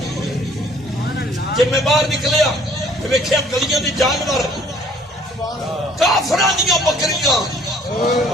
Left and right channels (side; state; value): both; normal; correlation 0.57